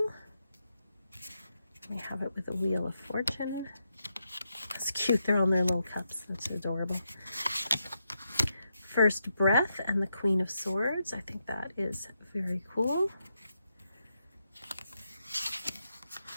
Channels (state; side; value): inverted; both; correlation -0.83